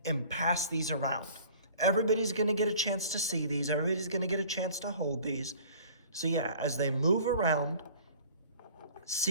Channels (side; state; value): both; inverted; correlation -0.48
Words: and pass these around. Everybody's gonna get a chance to see these. Everybody's gonna get a chance to hold these. So yeah, as they move around,